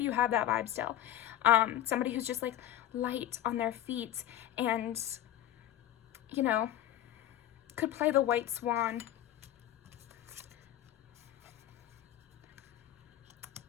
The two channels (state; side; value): quieter; right; 12.6 dB